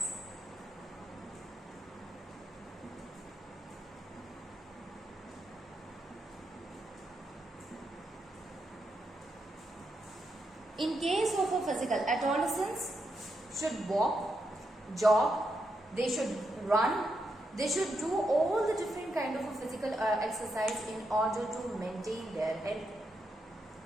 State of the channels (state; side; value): normal; both; correlation 0.83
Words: In case of a physical, adolescents should walk, jog, they should run, they should do all the different kind of a physical exercise in order to maintain their health.